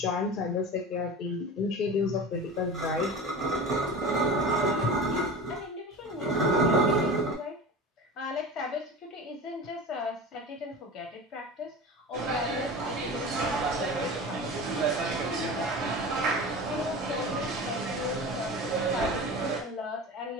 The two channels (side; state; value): both; normal; correlation 0.32